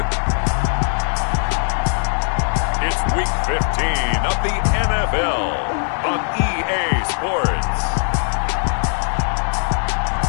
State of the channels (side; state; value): right; silent; digital silence